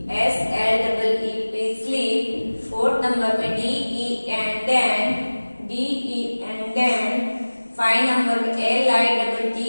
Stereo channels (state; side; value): inverted; both; correlation -1.00